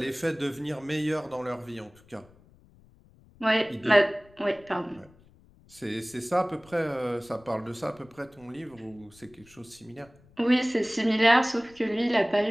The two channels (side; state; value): left; noise; rumble, 27 dB below the sound